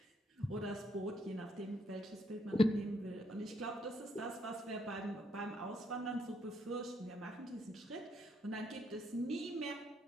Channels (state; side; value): normal; both; correlation 0.73